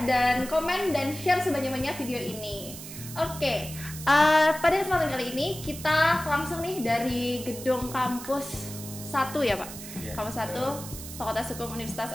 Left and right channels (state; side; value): noise; right; hiss, 12 dB below the sound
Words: dan komen dan share sebanyak-banyak video ini. Oke, pada kesempatan kali ini kita langsung nih dari gedung kampus 1 ya Pak, kampus 1 Fakultas Hukum Universitas